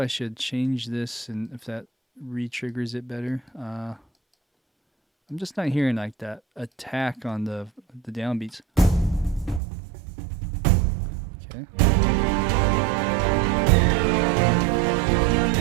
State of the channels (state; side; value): drops out; left; at 9.6 s